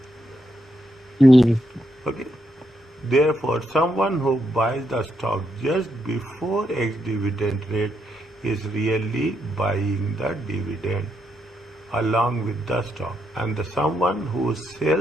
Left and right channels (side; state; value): both; normal; correlation 0.80